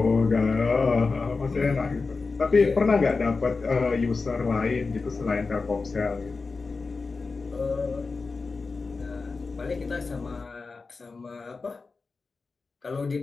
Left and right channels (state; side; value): quieter; right; 4.2 dB